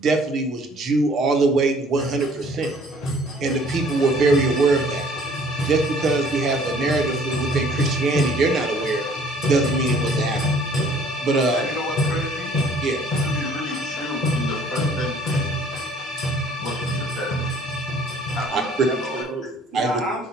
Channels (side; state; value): both; normal; correlation 0.56